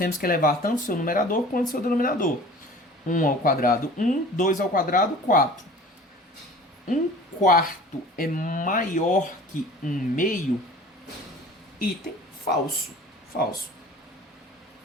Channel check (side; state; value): both; normal; correlation 0.44